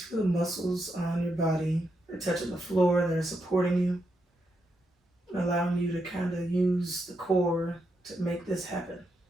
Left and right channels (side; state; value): both; normal; correlation 0.82